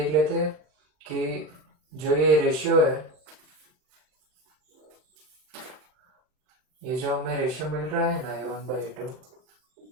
लेते हैं कि जो ये रेशियो है, ये जो हमें रेशियो मिल रहा है ना A1/A2,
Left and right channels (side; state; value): left; late; 39 ms